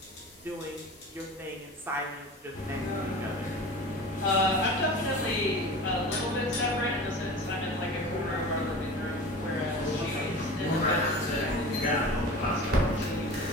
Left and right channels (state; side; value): normal; both; correlation 0.36